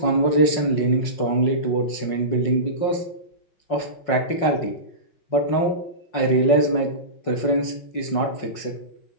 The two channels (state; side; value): late; right; 5.5 ms